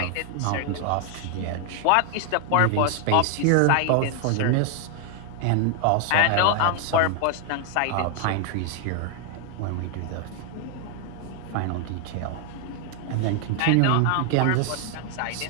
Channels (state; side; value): different; both; correlation 0.00